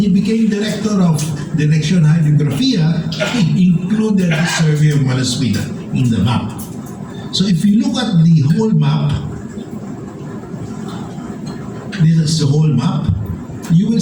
he became director of Direction Hydrographia, he included the survey of Malaspina in the map. So if you look at the whole map, this is the whole map. You will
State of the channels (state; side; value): identical; both; correlation 1.00